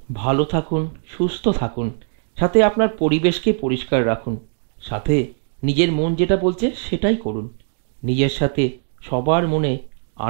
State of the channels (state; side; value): silent; left; digital silence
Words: ভালো থাকুন, সুস্থ থাকুন, সাথে আপনার পরিবেশকে পরিষ্কার রাখুন, সাথে নিজের মন যেটা বলছে সেটাই করুন, নিজের সাথে সবার মনে